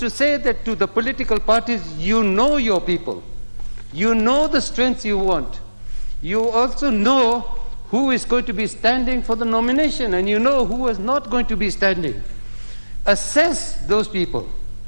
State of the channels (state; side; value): inverted; both; correlation -1.00